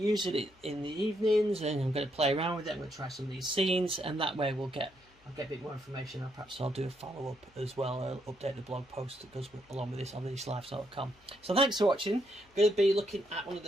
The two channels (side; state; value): left; noise; hum, 30 dB below the sound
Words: it in the evenings, and I'm going to play around with it. I'm going to try some of these scenes, and that way we'll get I'll get a bit more information, and perhaps I'll do a follow-up as well. I'll update the blog post that goes along with this on theslives.com. So thanks for watching. I'm going to be looking at one of